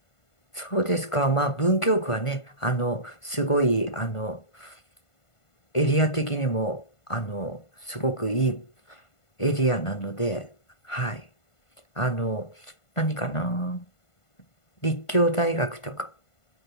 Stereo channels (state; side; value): late; right; 1.5 ms